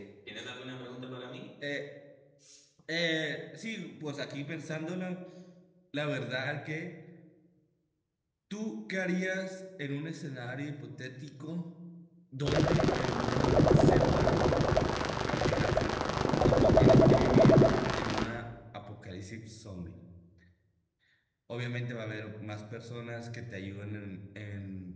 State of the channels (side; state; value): both; identical; correlation 1.00